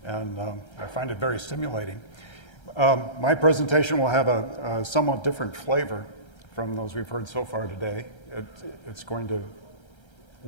and I find it very stimulating. My presentation will have a somewhat different flavor from those we've heard so far today. It's going to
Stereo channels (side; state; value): right; late; 1.3 ms